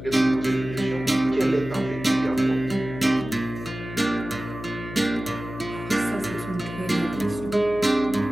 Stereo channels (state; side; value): noise; left; hum, 11 dB below the sound